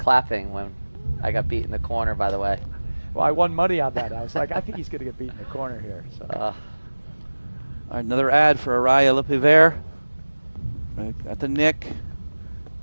when I got beat in the corner, by the way. Well, I won money on that. I was like, I think he's going to get beat in the corner here. So. All right, another ad for Arraya LePivert. At the nick.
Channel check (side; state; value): both; inverted; correlation -1.00